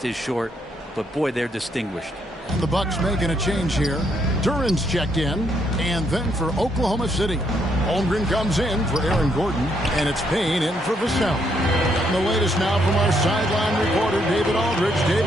is short, but boy, they're distinguished. And the Bucks making a change here. Duran's checked in, and then for Oklahoma City, Holmgren comes in for Aaron Gordon, and it's Payne in for Vassell. And the latest now from our sideline reporter, David Aldridge.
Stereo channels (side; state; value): both; normal; correlation 0.73